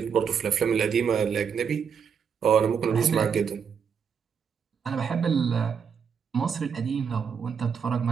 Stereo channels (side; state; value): left; quieter; 6.8 dB